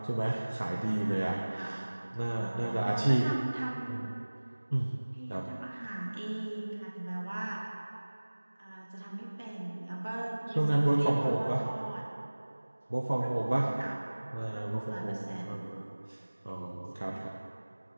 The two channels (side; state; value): both; inverted; correlation -1.00